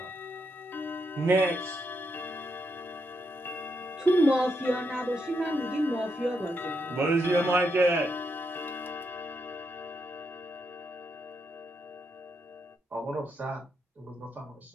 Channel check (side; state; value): both; normal; correlation 0.81